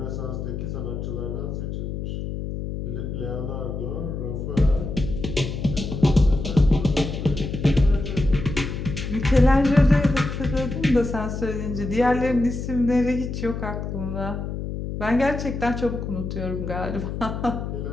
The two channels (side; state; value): left; noise; hum, 5 dB below the sound